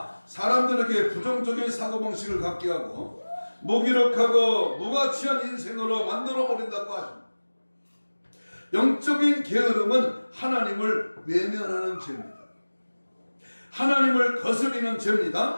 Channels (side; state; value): both; inverted; correlation -1.00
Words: 사람들에게 부정적인 사고방식을 갖게 하고 무기력하고 무가치한 인생으로 만들어버린다고 하십니다. 영적인 게으름은 하나님을 외면하는 죄입니다. 하나님을 거스리는